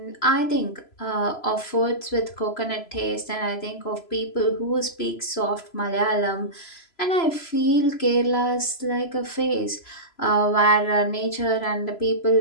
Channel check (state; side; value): late; right; 3.0 ms